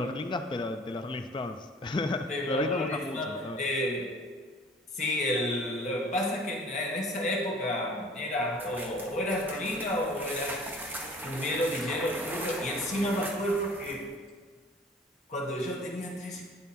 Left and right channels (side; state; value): both; normal; correlation 0.48